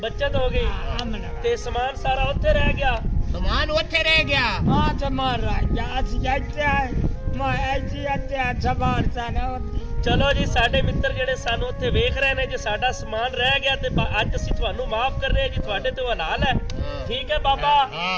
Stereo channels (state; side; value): identical; both; correlation 1.00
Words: ਬੱਚਤ ਹੋ ਗਈ हमने ਤੇ ਸਮਾਨ ਸਾਰਾ ਉੱਥੇ ਰਹਿ ਗਿਆ। ਸਮਾਨ ਉੱਥੇ ਰਹਿ ਗਿਆ। हाँ तो मार रहा है आज जाते है मैं ऐसी अत्ते सवार सा ना होती ਚਲੋ ਜੀ, ਸਾਡੇ ਮਿੱਤਰ ਜਿਹੜੇ ਸਾਨੂੰ ਉੱਥੇ ਵੇਖ ਰਹੇ ਨੇ, ਜੇ ਸਾਡਾ ਸਮਾਨ ਰਹਿ ਗਿਆ ਤੇ ਅੱਜ ਅਸੀਂ ਤੁਹਾਨੂੰ ਮਾਫ ਕਰ ਰਹੇ ਹਾਂ ਜੀ, ਤੁਹਾਡੇ ਤੇ ਹਲਾਲ ਹੈ। ਠੀਕ ਹੈ ਬਾਬਾ,